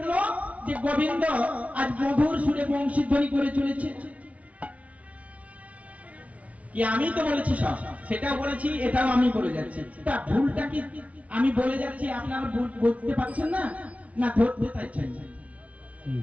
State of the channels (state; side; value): late; left; 0.066 ms